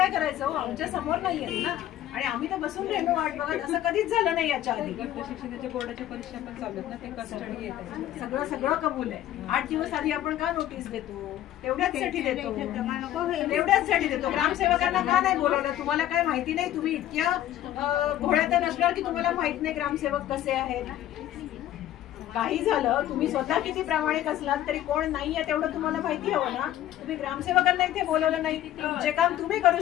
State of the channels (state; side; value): quieter; right; 12.7 dB